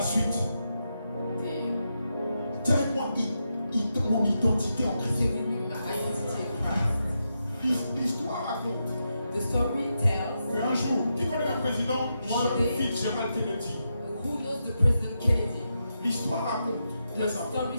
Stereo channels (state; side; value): inverted; both; correlation -0.85